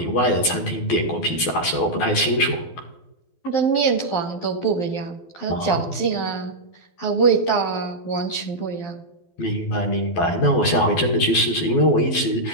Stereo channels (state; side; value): late; right; 12 ms